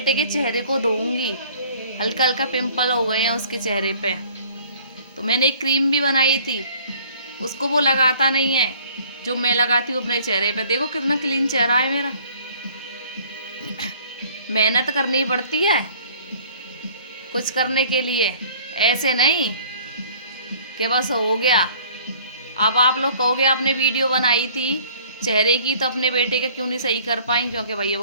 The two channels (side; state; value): both; inverted; correlation -0.54